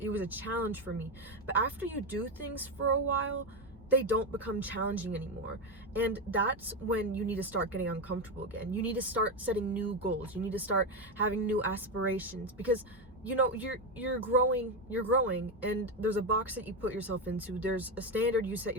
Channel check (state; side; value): normal; both; correlation 0.11